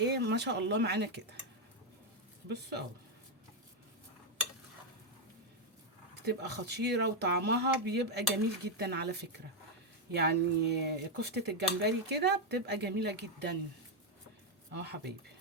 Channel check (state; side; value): normal; both; correlation 0.02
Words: ما شاء الله معانا كده. بصوا اهو بتبقى خطيره وطعمها بيبقى جميل جدا على فكره. يعني كفته الجمبري كده بتبقى جميله جدا. اهو حبايبي.